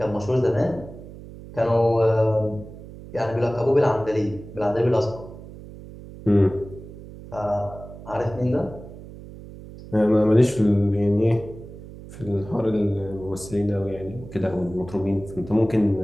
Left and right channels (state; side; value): noise; right; hum, 15 dB below the sound